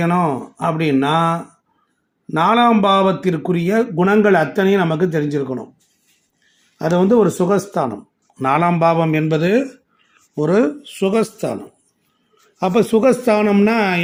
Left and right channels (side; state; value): both; identical; correlation 1.00